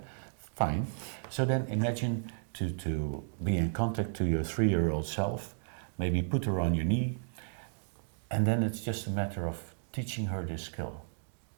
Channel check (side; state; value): left; silent; digital silence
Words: fine. So then imagine to be in contact to your 3-year-old self, maybe put her on your knee, and then it's just a matter of teaching her this skill.